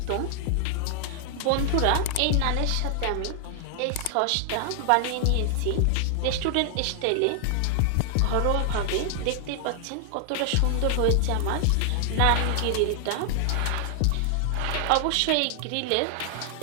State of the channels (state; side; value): different; both; correlation 0.00